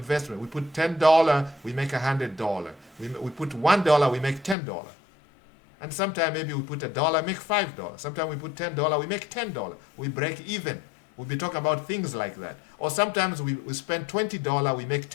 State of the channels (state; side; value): drops out; right; at 4.5 s